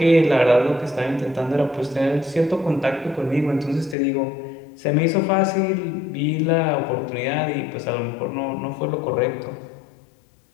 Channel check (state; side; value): drops out; right; at 4.0 s